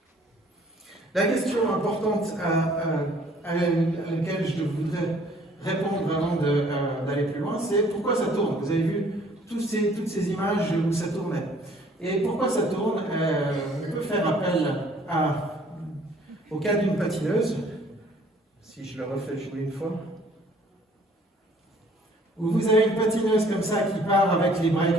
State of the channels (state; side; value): normal; both; correlation 0.57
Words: La question importante à laquelle je voudrais répondre avant d'aller plus loin, c'est pourquoi ça tourne. Vous avez vu toutes ces images où ça tournait. Et pourquoi ça tourne? On peut faire appel au cas d'une patineuse, si je le refais jouer une fois, où vous avez une patineuse comme ça qui part avec les bras